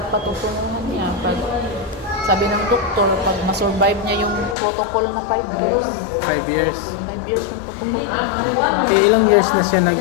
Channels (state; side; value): drops out; right; at 4.5 s